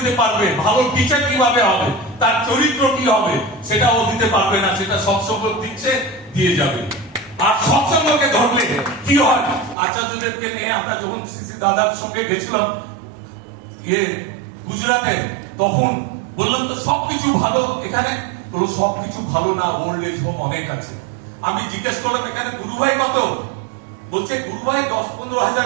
পারবে, ভালো টিচার কিভাবে হবে, তার চরিত্র কি হবে, সেটা ও দিতে পারবে না, সেটা সৎসঙ্গ দিচ্ছে, দিয়ে যাবে। আর সৎসঙ্গকে ধরলে কি হয়, আচার্যদেবকে নিয়ে আমরা যখন সিসি দাদার সঙ্গে গেছিলাম গুজরাটে, তখন বললাম তো সবকিছু ভালো এখানে, বললো সবকিছু ভালো না, ওল্ড এজ হোম অনেক আছে। আমি জিজ্ঞেস করলাম এখানে গুরুভাই কত? বলছে গুরুভাই 10-15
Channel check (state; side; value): drops out; left; at 9.8 s